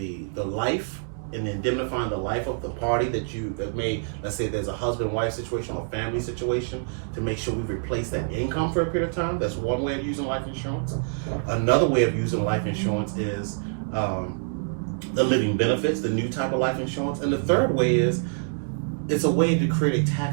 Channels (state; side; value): silent; left; digital silence